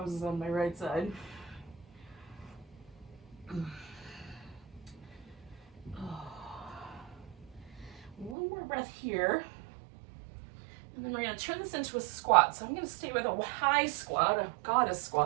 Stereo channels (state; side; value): drops out; left; at 8.3 s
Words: on my right side. One more breath here. And then we're going to turn this into a squat. So I'm going to stay with a high squat, a goddess